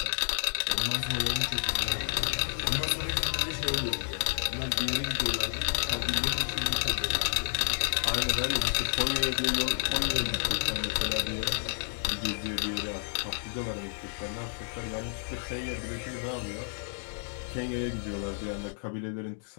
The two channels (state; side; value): silent; right; 57 dB below the other